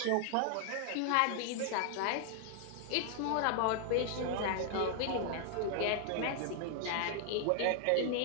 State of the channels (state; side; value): different; both; correlation 0.00